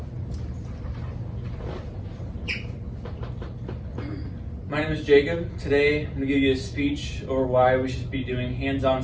My name is Jacob. Today I'm going to give you a speech over why we should be doing hands-on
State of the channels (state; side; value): identical; both; correlation 1.00